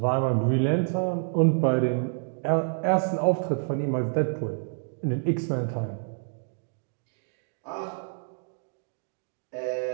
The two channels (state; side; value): silent; left; 59 dB below the other